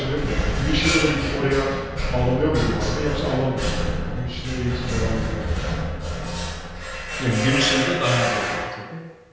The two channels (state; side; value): identical; both; correlation 1.00